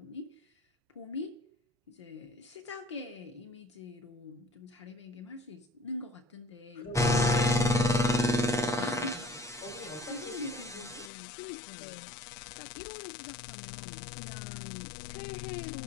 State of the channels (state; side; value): drops out; right; at 11.1 s